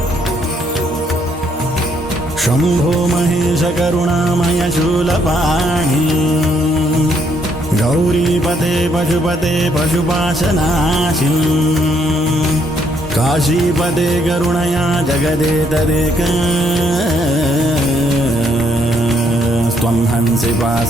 शम्भो महेश करुणामय शूलपाणि गौरीपते पशुपते पशुपाशनाशिन् काशीपदे करुणया जगदेतदेक त्वं हंसि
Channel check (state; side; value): normal; both; correlation 0.71